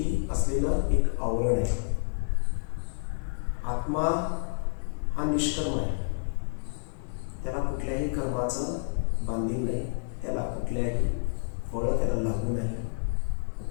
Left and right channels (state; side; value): silent; right; digital silence